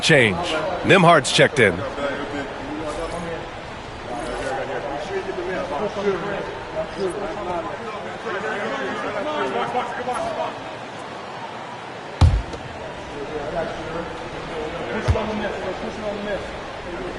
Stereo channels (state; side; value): identical; both; correlation 1.00